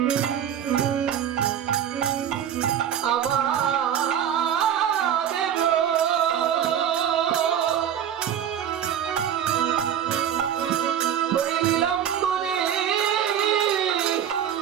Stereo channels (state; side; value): quieter; left; 9.5 dB